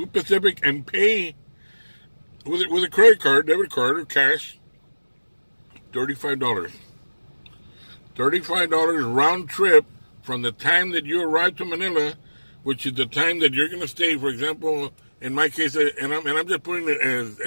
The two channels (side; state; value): both; inverted; correlation -1.00